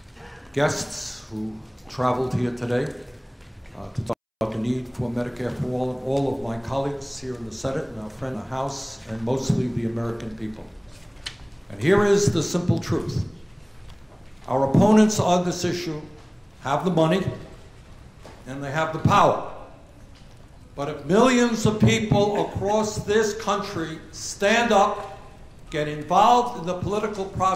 guests who traveled here today to talk about the need for Medicare for all, and all of my colleagues here in the Senate and our friend in the House, and mostly the American people. And here is the simple truth. Our opponents on this issue have the money and they have the power. But if millions of people across this country stand up, get involved in the political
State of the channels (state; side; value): identical; both; correlation 1.00